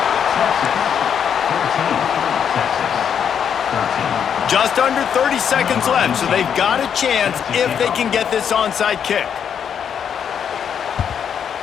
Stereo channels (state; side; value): quieter; right; 8.0 dB